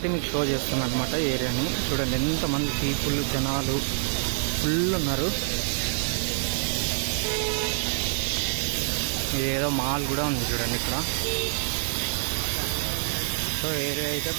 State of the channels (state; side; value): silent; left; digital silence